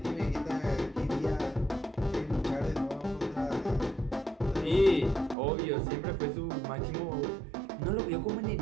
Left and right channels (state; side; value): drops out; left; at 5.4 s